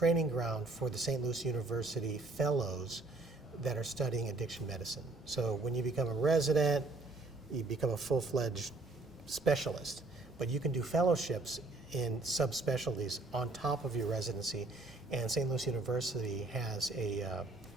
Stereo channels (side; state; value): left; quieter; 3.2 dB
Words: ground for the St. Louis University fellows that are studying addiction medicine. So when you become a resident, you become a full-fledged specialist, but you can do fellowships in subspecialties on top of your residency. And St. Louis University has a